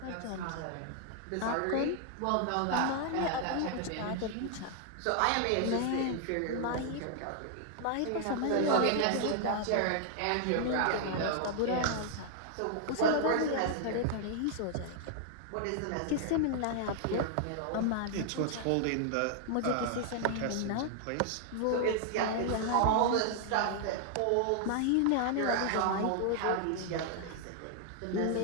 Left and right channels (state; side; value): different; both; correlation 0.00